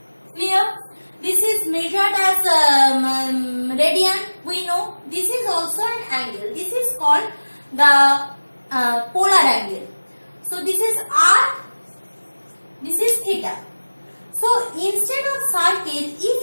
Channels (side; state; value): both; inverted; correlation -1.00